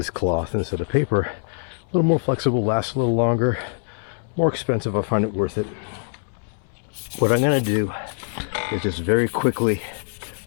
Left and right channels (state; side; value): silent; right; 63 dB below the other